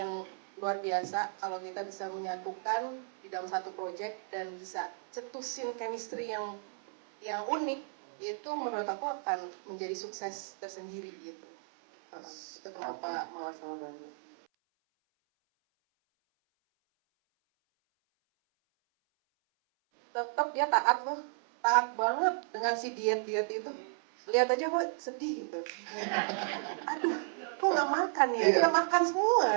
luar biasa, kalau kita bisa menyatukan di dalam satu project dan bisa cetusin chemistry yang unik, itu menurut aku akan menjadi sukses tersendiri gitu. Itu kenapa Mawar sama Bani. Tetap dia taat loh, taat banget dengan si diet itu. Lihat aja kok sedih gitu. Aduh, kok nggak makan ya? Kita makan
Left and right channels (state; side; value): silent; left; 55 dB below the other